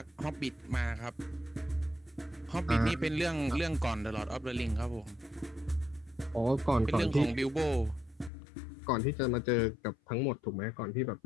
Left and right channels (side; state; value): right; drops out; at 8.3 s